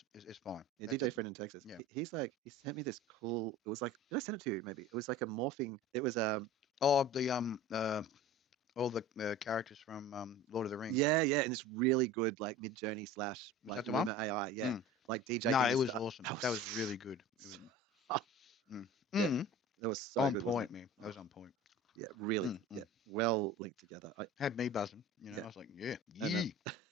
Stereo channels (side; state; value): both; normal; correlation 0.38